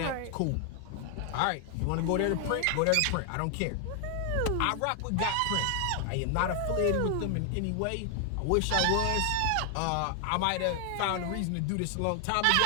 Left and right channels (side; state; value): both; different; correlation 0.00